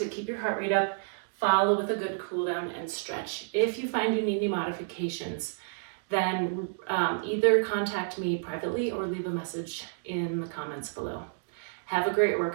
keep your heart rate up. Follow with a good cool down and stretch. If you find you need any modifications, then either contact me privately or leave a message in the comments below. Have a great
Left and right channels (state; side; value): silent; left; digital silence